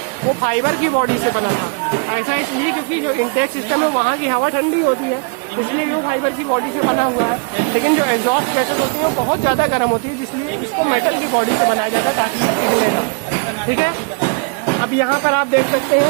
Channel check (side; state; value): left; quieter; 35.2 dB